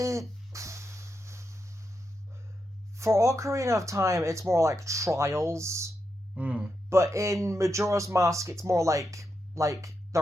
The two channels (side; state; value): both; normal; correlation 0.85